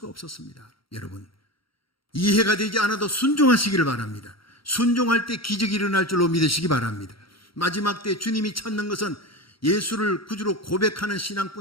없었습니다. 여러분, 이해가 되지 않아도 순종하시기를 바랍니다. 순종할 때 기적이 일어날 줄로 믿으시기 바랍니다. 마지막 때 주님이 찾는 것은 예수를 구주로 고백하는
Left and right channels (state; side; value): late; right; 0.74 ms